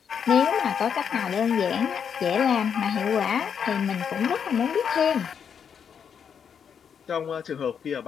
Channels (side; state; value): right; quieter; 7.4 dB